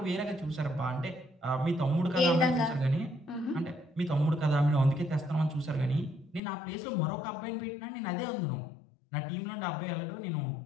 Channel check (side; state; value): right; drops out; at 6.4 s